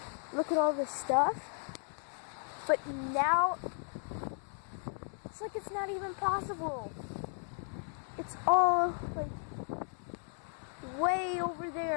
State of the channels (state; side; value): silent; right; 54 dB below the other